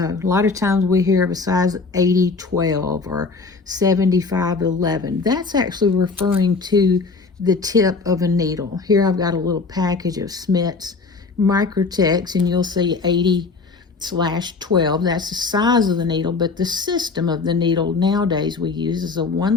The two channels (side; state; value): right; quieter; 4.2 dB